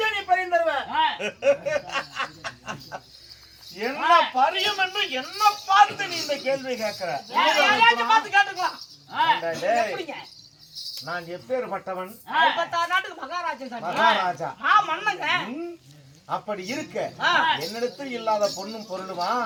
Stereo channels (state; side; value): identical; both; correlation 1.00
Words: நீ பறி தருவ? என்ன பரியம் என்று என்ன பார்த்து நீ இந்த கேள்வி கேட்கிற? பார்த்து கேட்டுக்கலாம். நான் எப்பேற்பட்டவன்? நாட்டுக்கு மகாராஜா. மன்னங்க. அப்படி இருக்க என்னிடத்தில் இல்லாத பொண்ணும் பொருளுமா